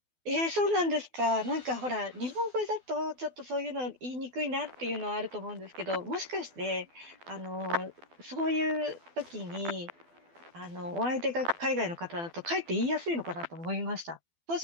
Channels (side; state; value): left; late; 12 ms